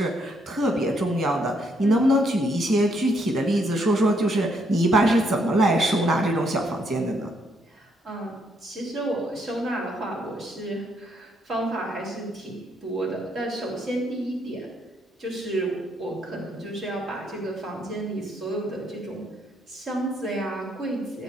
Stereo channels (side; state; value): both; normal; correlation 0.73